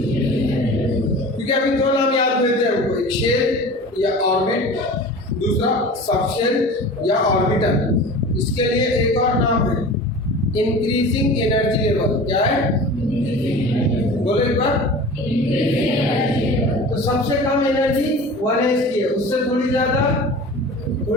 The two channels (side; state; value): both; normal; correlation 0.38